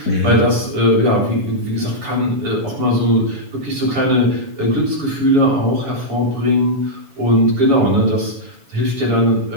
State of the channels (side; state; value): left; late; 7.2 ms